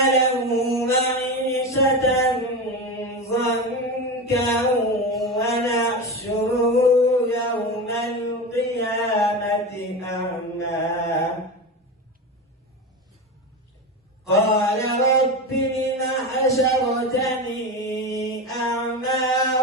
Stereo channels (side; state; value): both; normal; correlation 0.22